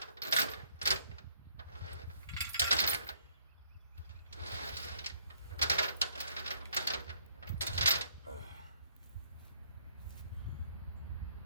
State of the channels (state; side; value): inverted; both; correlation -0.66